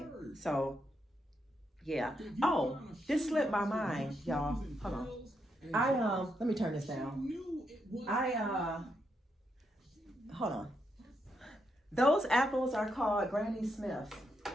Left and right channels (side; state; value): both; normal; correlation 0.80